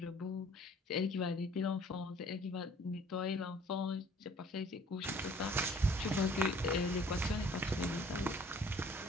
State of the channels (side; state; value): both; normal; correlation 0.54